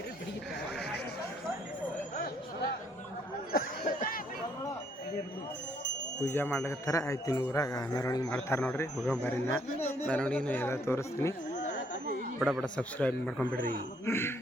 ಪೂಜೆ ಮಾಡ್ಲಿಕತ್ತಾರ. ಆಯ್ತು ಇನ್ನು ಊರಾಗ ಮೆರವಣಿಗೆ ಮಾಡ್ತಾರೆ ನೋಡ್ರಿ. ಹೋಗೋಬಾರಿನ ಮೆರವಣಿಗೆನ ಎಲ್ಲ ತೋರಿಸ್ತೀನಿ. ಬಡ ಬಡ ಸಬ್ಸ್ಕ್ರೈಬ್ ಮಾಡ್ಕೊಂಬಿಡ್ರಿ.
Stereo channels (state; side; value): normal; both; correlation 0.68